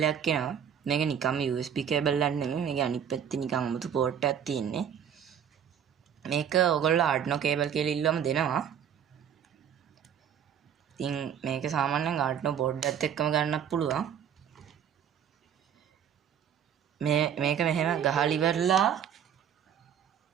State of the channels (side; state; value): left; quieter; 8.6 dB